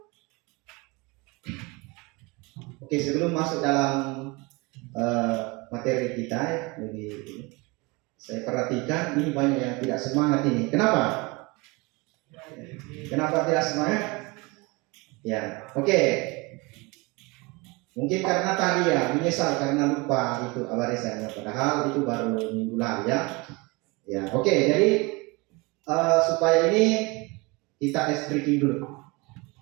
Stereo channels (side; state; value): left; quieter; 26.0 dB